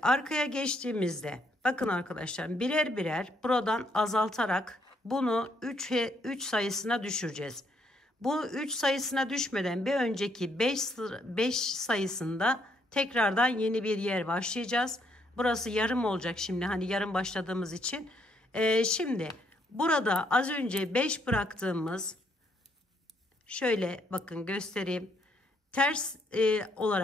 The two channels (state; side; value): normal; both; correlation 0.72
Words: arkaya geçtiğimizde bakın arkadaşlar, birer birer buradan azaltarak bunu 3 sayısına düşüreceğiz. Bu 3 sayısına düşmeden bir önceki 5 sayısında tekrardan yeni bir yer başlayacağız. Burası yarım olacak şimdi, hani yarım başladığımız için. Şimdi burada az önce 5 bıraktığımız, şöyle bakın göstereyim. Ters